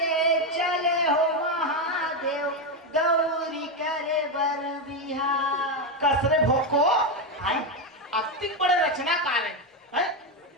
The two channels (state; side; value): normal; both; correlation 0.08